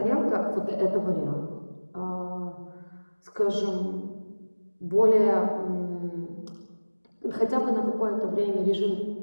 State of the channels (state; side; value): inverted; both; correlation -1.00